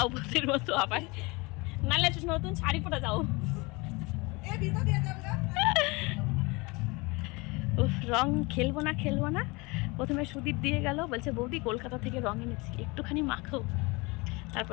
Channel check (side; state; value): right; quieter; 25.9 dB